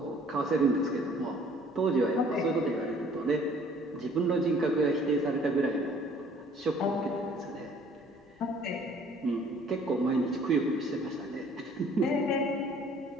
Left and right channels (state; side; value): normal; both; correlation 0.56